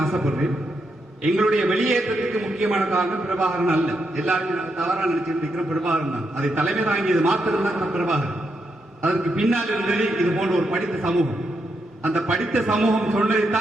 ஆசைப்படுறேன். எங்களுடைய வெளியேற்றத்துக்கு முக்கியமான காரணம் பிரபாகரன் அல்ல. எல்லாருமே தவறாக நினைச்சிட்டு இருக்கிற பிரபாகரன் தான். அதை தலைமை தாங்கியது மாத்திரம் தான் பிரபாகரன். அதற்கு பின்னால் இருந்தது இது போன்ற ஒரு படித்த சமூகம். அந்த படித்த சமூகம்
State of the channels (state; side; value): normal; both; correlation 0.82